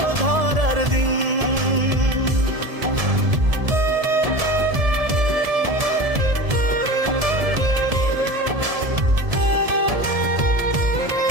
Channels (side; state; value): left; late; 1.7 ms